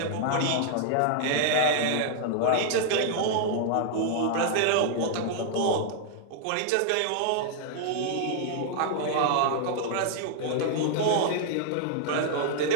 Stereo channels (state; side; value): different; both; correlation 0.00